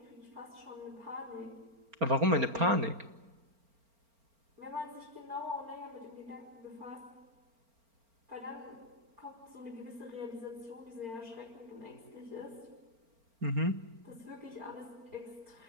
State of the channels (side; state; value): left; late; 4.4 ms